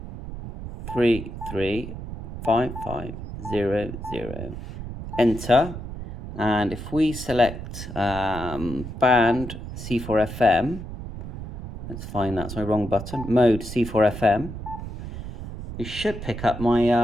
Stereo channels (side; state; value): right; noise; rumble, 9 dB below the sound